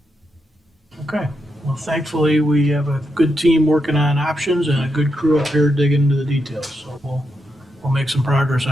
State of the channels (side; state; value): both; normal; correlation 0.84